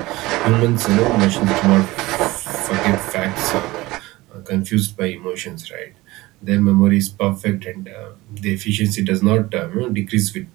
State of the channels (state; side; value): quieter; left; 19.8 dB